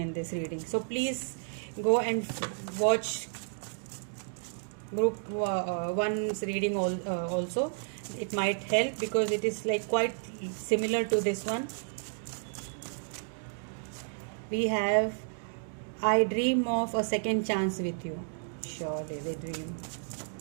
this reading. So please go and watch group 1's reading also. It might help because it is like quite similar to this one. We have, I dream of a second chance with you. Surely they dream.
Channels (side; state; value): left; silent; digital silence